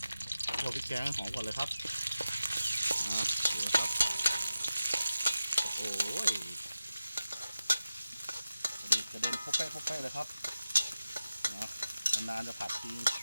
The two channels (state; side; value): inverted; both; correlation -0.93